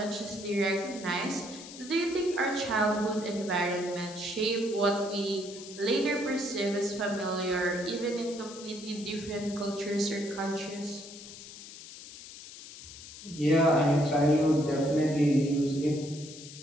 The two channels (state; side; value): noise; left; hiss, 15 dB below the sound